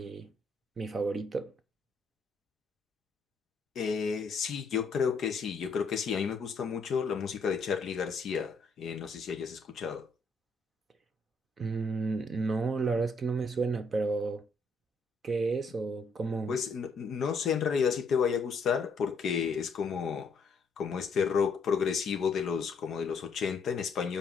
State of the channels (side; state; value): right; quieter; 3.3 dB